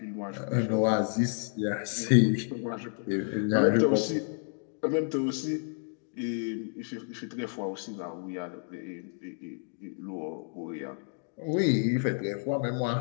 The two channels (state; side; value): silent; right; 58 dB below the other